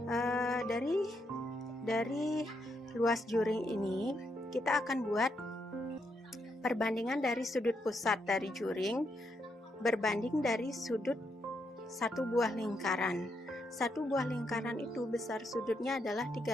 Dari luas juring ini, kita akan buat perbandingan dari sudut pusat dari juring berbanding dari sudut satu buah lingkaran. Satu buah lingkaran itu besar sudutnya adalah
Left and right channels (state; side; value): normal; both; correlation 0.79